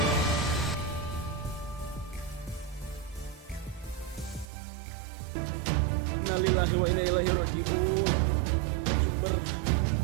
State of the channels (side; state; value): left; drops out; at 4.5 s